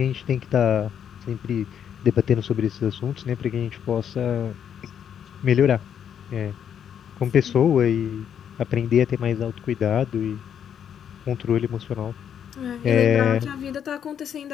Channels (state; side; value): quieter; right; 8.7 dB